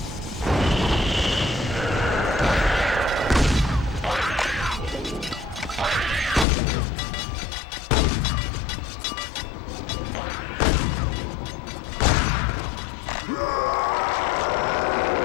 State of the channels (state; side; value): drops out; right; at 6.5 s